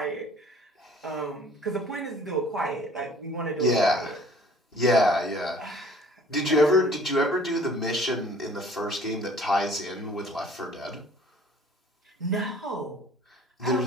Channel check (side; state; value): both; normal; correlation 0.52